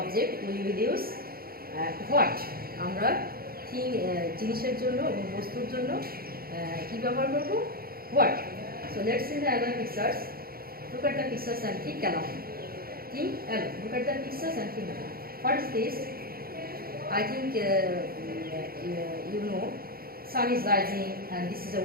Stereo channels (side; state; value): left; late; 0.44 ms